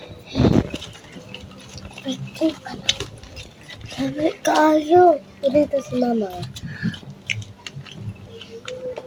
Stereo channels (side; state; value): both; identical; correlation 1.00